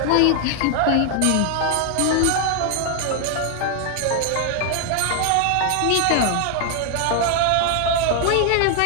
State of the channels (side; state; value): both; different; correlation 0.00